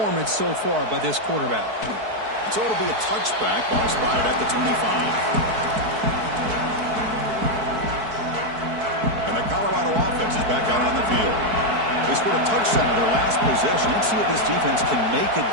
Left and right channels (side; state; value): left; late; 4.6 ms